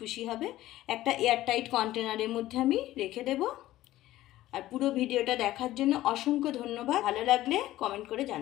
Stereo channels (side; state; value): right; quieter; 15.2 dB